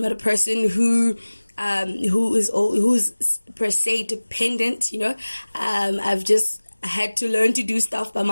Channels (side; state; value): both; inverted; correlation -1.00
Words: not a person who's per se dependent. I had to learn to do stuff by